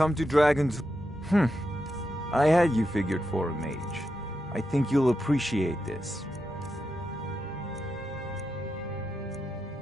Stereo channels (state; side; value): normal; both; correlation 0.86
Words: to Dragon's... I had you figured for a mage. I think you'll appreciate this.